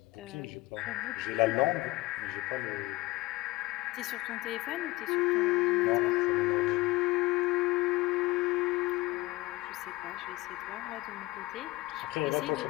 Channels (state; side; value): quieter; right; 20.0 dB